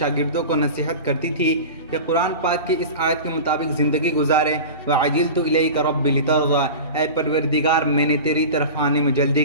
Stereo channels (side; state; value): both; inverted; correlation -0.31